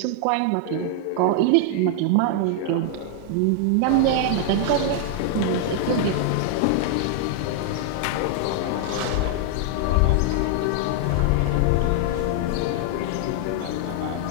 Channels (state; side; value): different; both; correlation 0.00